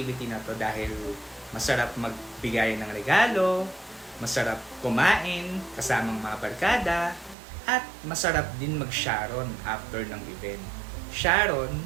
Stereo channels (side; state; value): left; drops out; at 7.4 s